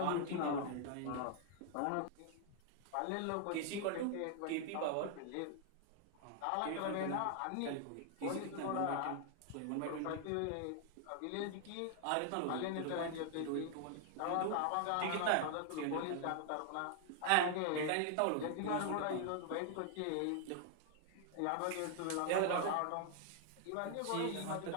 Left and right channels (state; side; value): different; both; correlation 0.00